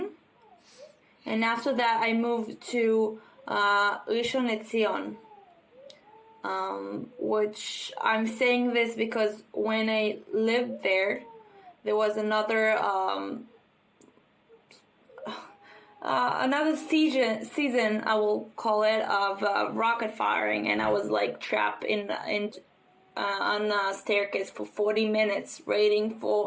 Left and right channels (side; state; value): both; identical; correlation 1.00